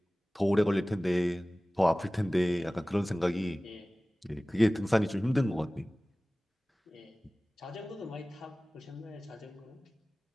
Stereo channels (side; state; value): both; normal; correlation 0.98